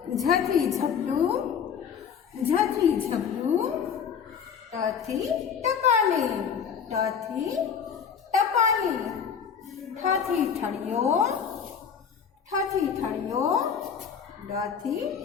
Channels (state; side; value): quieter; right; 7.2 dB